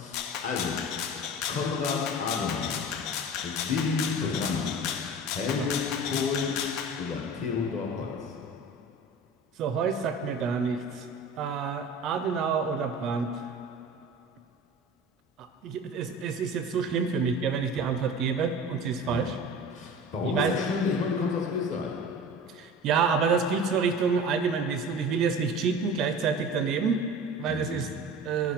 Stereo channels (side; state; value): both; normal; correlation 0.37